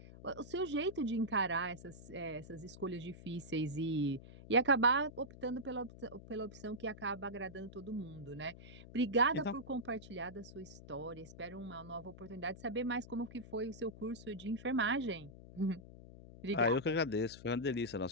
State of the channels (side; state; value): left; noise; hum, 16 dB below the sound